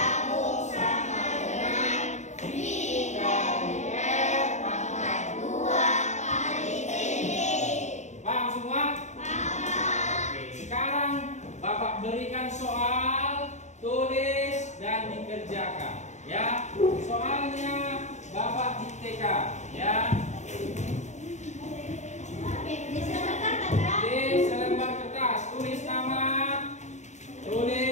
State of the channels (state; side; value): late; right; 0.34 ms